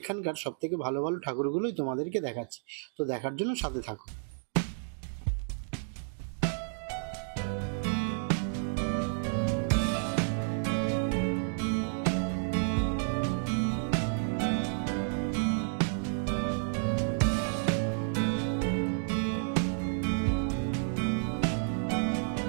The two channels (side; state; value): left; silent; digital silence